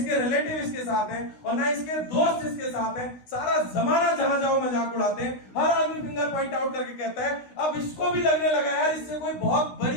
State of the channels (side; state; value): right; late; 16 ms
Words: रिलेटिव इसके साथ है, और ना इसके दोस्त इसके साथ है। सारा जमाना जहां जाओ मजाक उड़ाते हैं। हर आदमी फिंगर पॉइंट आउट करके कहता है अब इसको भी लगने लगा यार इससे कोई बहुत